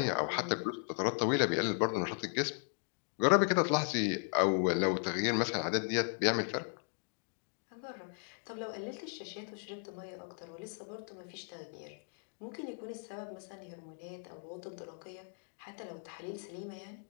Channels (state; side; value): silent; right; 53 dB below the other